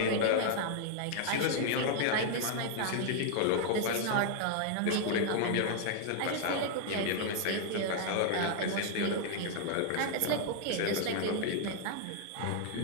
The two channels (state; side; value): different; both; correlation 0.00